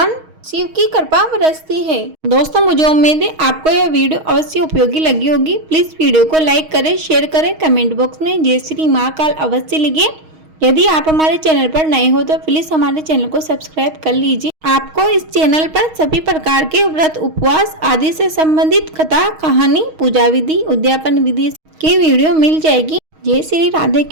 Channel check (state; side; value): late; left; 6.4 ms